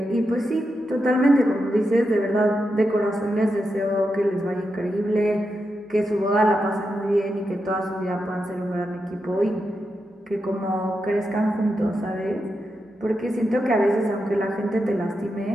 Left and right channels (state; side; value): normal; both; correlation 0.87